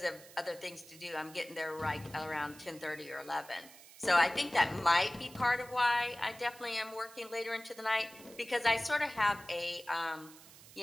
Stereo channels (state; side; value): noise; right; hiss, 20 dB below the sound